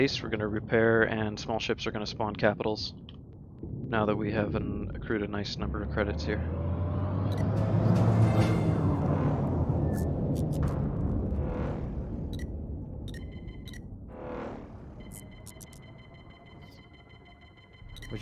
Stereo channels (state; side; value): identical; both; correlation 1.00